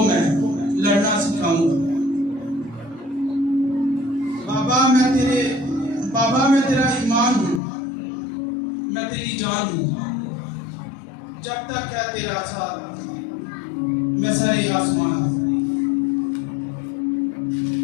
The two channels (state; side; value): drops out; right; at 7.6 s